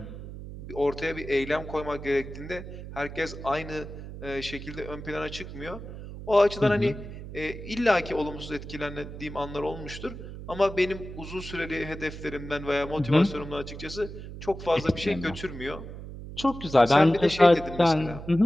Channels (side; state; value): right; noise; hum, 11 dB below the sound